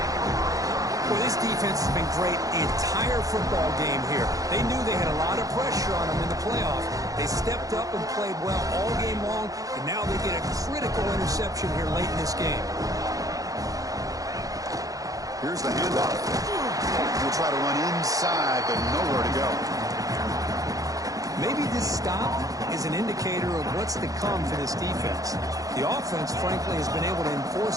Well, this defense has been great the entire football game here. They knew they had a lot of pressure on them in the playoff. They stepped up and played well all game long, and now they get a critical interception here late in this game. Here's the handoff. We'll try to run inside, but nowhere to go. Maybe this stop is an indicator of what's to come for this defense. The offense, frankly, has been able to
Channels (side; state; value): left; late; 0.17 ms